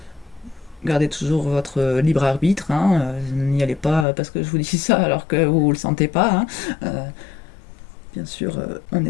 gardez toujours votre libre arbitre. Hein, n'y allez pas parce que je vous dis ça alors que vous ne le sentez pas. Hein. Bien sûr, on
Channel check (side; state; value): right; drops out; at 4.0 s